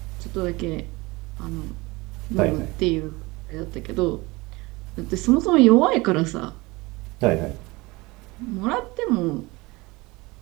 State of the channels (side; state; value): left; quieter; 23.0 dB